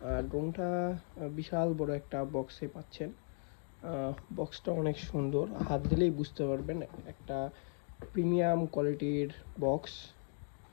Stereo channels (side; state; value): right; silent; 53 dB below the other